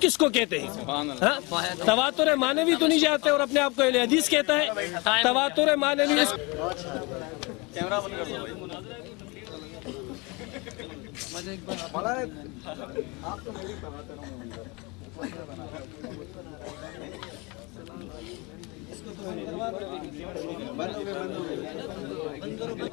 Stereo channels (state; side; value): quieter; right; 27.3 dB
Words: کس کو کہتے ہیں؟ تواتر مانوی تو نہیں جانتے اور اپنے آپ کو اہل حدیث کہتا ہے؟ تواتر مانوی بند ہو